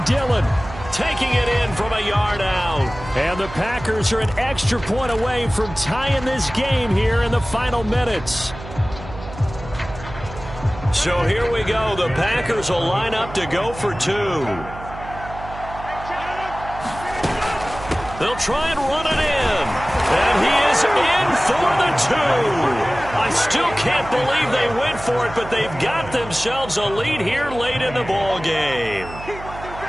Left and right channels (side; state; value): right; noise; hum, 13 dB below the sound